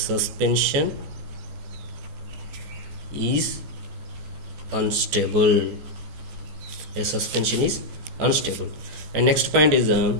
is unstable. A suspension is unstable. And next point is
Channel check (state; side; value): late; left; 14 ms